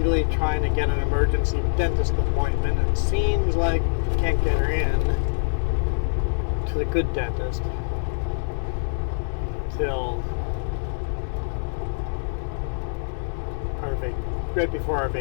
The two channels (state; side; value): silent; right; digital silence